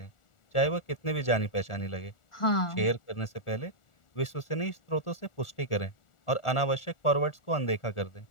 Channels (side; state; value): right; late; 1.4 ms